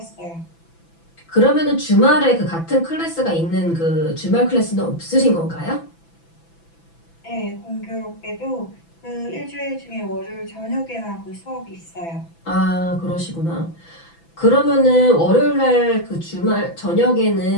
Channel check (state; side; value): late; right; 6.0 ms